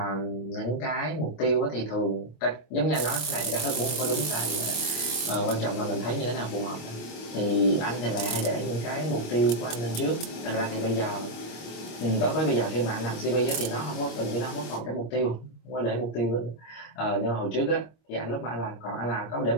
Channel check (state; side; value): late; right; 25 ms